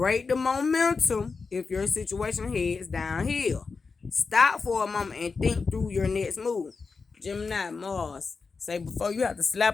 the momentum if your situation heads downhill. Stop for a moment and think through your next move. Gemini, Mars. Say before you have to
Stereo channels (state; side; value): quieter; right; 4.7 dB